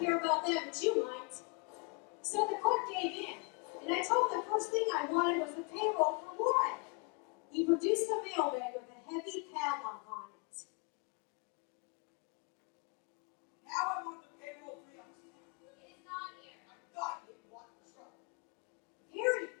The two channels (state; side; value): quieter; right; 32.6 dB